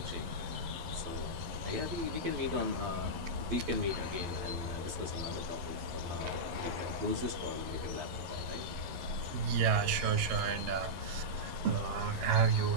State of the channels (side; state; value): left; late; 12 ms